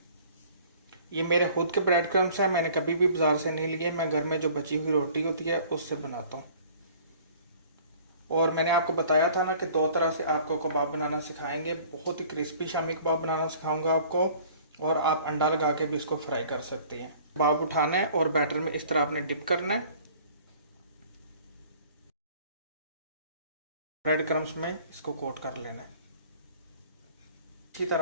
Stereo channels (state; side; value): inverted; both; correlation -0.51